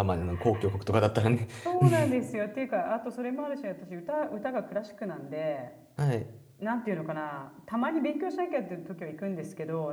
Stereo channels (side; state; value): both; identical; correlation 1.00